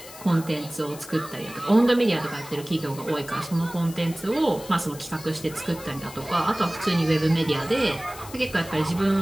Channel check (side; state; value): left; noise; hiss, 16 dB below the sound